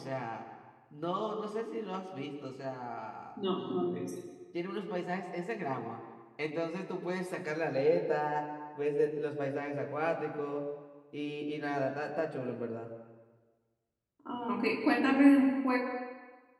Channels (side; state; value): both; identical; correlation 1.00